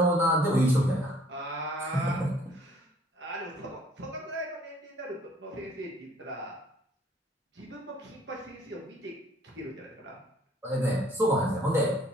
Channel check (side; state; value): both; normal; correlation 0.59